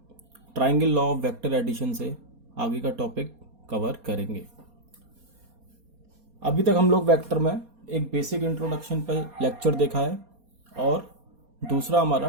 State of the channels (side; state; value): left; late; 4.2 ms